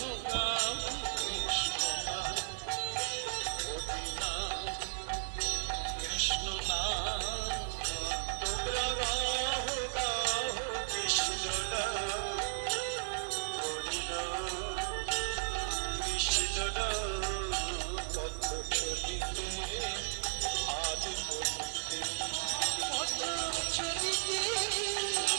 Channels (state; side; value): silent; left; digital silence